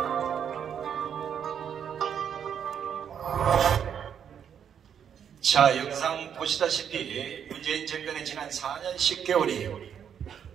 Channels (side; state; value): left; quieter; 8.3 dB